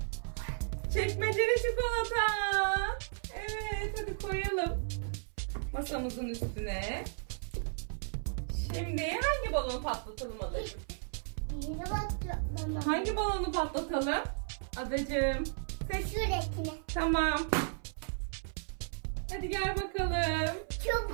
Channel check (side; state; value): left; silent; 55 dB below the other